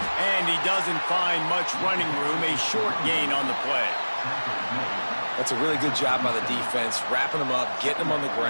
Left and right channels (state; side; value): inverted; both; correlation -1.00